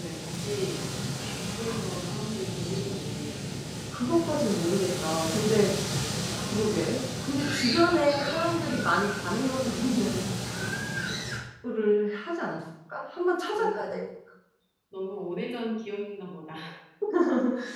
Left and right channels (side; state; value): both; identical; correlation 1.00